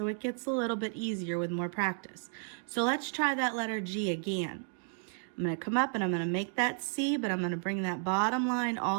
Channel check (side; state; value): left; silent; 56 dB below the other